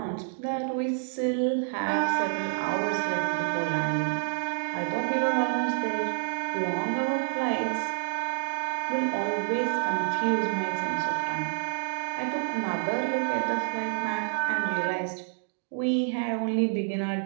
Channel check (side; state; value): left; silent; digital silence